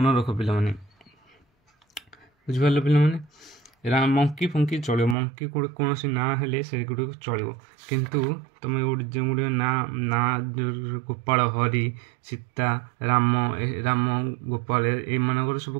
ରଖ ପିଲାମାନେ। ବୁଝିପାରିଲ ପିଲାମାନେ? ମଙ୍କି ଫଙ୍କି ଚଳିବ, ମଙ୍କି କୌଣସି ନାଁ ହେଲେ ସେଗୁଡ଼ିକ ଚଳିବ, କିନ୍ତୁ ତୁମେ ଯେଉଁଗୁଡ଼ିକ ନାଁ ଗୋପାଳ, ହରି, ସୀତା, ରାମ ଗୋପାଳ ଏଇମାନଙ୍କର ସବୁ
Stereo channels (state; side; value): drops out; left; at 5.2 s